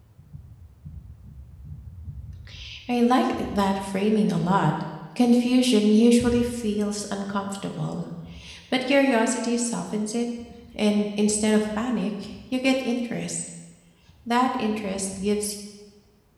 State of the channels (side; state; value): both; identical; correlation 1.00